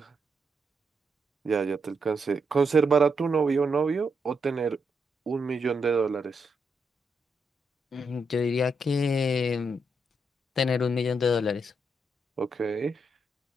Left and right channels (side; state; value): both; normal; correlation 0.81